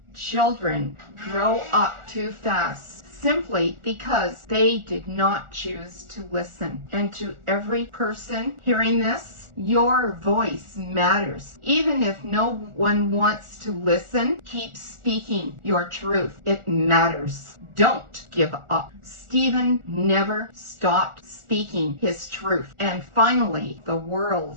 children grow up too fast simply because they did not choose to listen. And to every person hearing this, your voice matters. Even if no one wants to listen, keep speaking your truth. It matters. Don't give up. Stephen never stopped speaking his truth. And finally, the world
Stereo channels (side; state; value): left; late; 1.4 ms